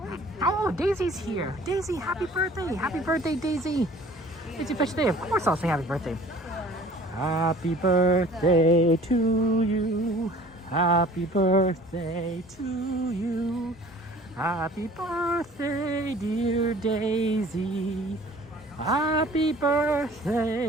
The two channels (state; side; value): normal; both; correlation 0.49